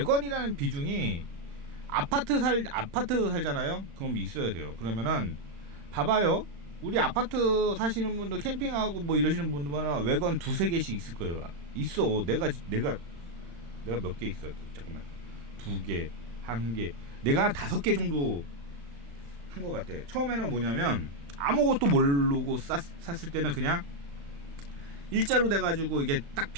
비중이 아파트 살잖아요. 그럼 있어야 돼요. 그러면은 봐봐요. 우리 아파트 사시는 분들, 캠핑하고 뭐 이러시는 분들은 외관 두세 개씩 있을 거예요. 있어. 내가 몇 개 있어. 잠깐만. 2개, 1개. 내가 한 5개 정도 한 것 같아. 처음에는 뭐냐면 아무것도 모르고 샀을 때는 그냥 일자로 돼가지고 이게 딱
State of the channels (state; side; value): late; left; 35 ms